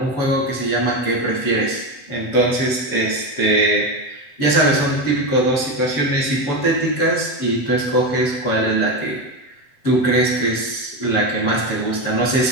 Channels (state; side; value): late; right; 7.8 ms